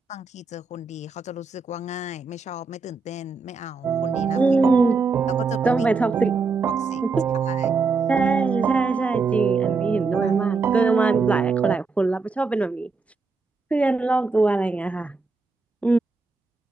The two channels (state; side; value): quieter; left; 4.2 dB